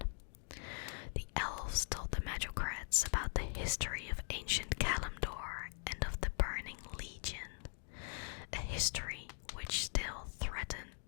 The elves told the magocrats about the history of ancient Kalimdor and of the Burning Legion, a history which still threatened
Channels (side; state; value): right; silent; 50 dB below the other